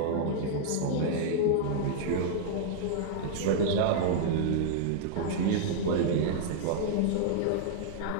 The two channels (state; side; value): different; both; correlation -0.01